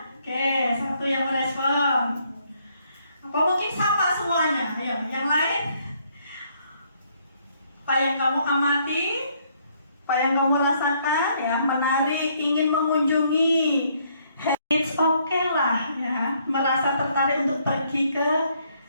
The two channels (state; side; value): inverted; both; correlation -0.69